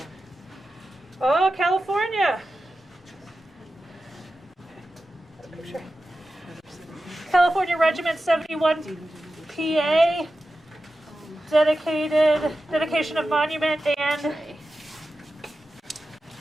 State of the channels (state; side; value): normal; both; correlation 0.93